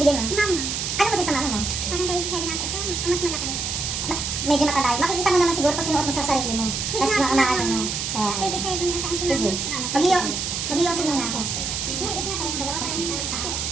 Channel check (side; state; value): right; noise; hiss, 2 dB below the sound